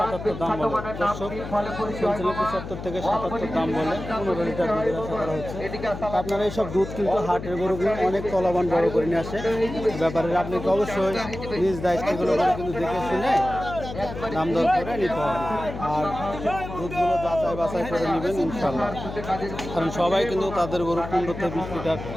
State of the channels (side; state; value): left; noise; hum, 9 dB below the sound